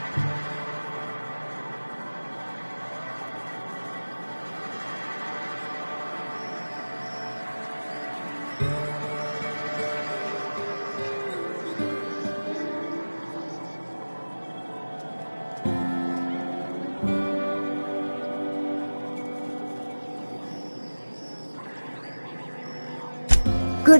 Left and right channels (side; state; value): both; inverted; correlation -1.00